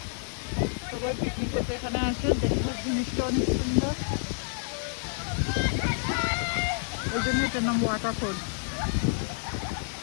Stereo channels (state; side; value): silent; right; digital silence